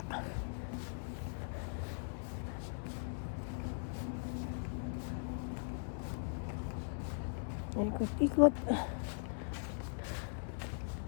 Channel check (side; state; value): right; silent; 51 dB below the other